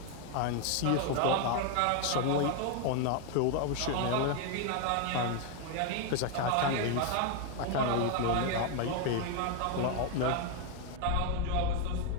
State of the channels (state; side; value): different; both; correlation 0.01